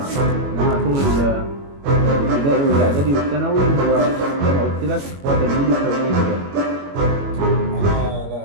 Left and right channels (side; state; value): left; late; 21 ms